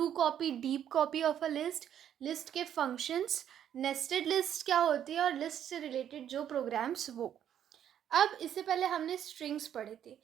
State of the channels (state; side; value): quieter; left; 9.9 dB